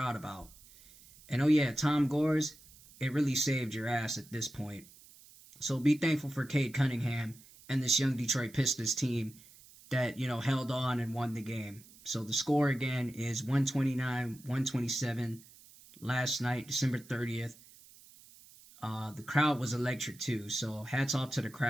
about. And, oh, yeah, Tom Gores, it really saved your ass at this point. So be thankful for Cade Cunningham and this young Detroit Pistons team that, you know, held on and won the game. So the score, again, is 129-127 last night, December 30th. The crowd was electric, too. So hats off to the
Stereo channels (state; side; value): noise; right; hiss, 23 dB below the sound